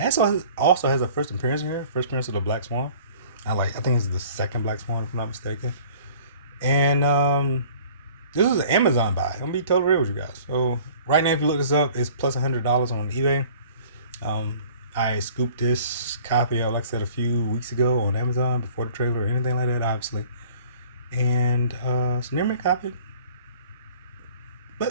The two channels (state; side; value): inverted; both; correlation -0.50